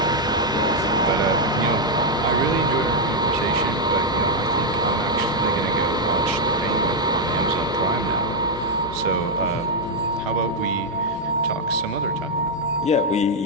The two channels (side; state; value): both; normal; correlation 0.00